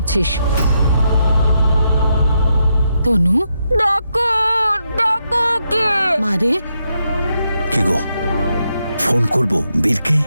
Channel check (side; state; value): both; inverted; correlation -0.81